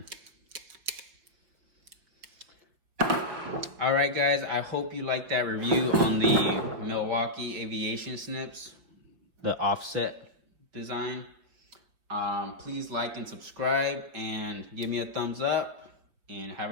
All right, guys. I hope you liked that review on the Milwaukee Aviation Snips, the offset design. Please like and subscribe and give me a thumbs up, and have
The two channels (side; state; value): left; late; 5.6 ms